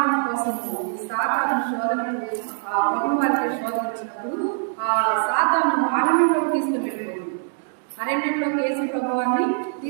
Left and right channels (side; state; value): left; silent; digital silence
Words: కోసం సాతాను శోధనలు ప్రభు వారికి శోధన వచ్చినప్పుడు ఆ సాతాను అరణ్యంలోకి తీసుకుని వెళ్ళిపోతుంది. అరణ్యంలోకి యేసు ప్రభు వారిని